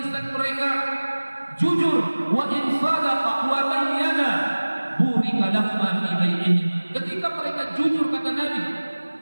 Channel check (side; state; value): both; inverted; correlation -1.00